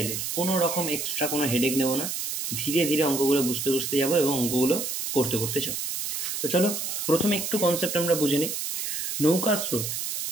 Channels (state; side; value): noise; right; hiss, 3 dB below the sound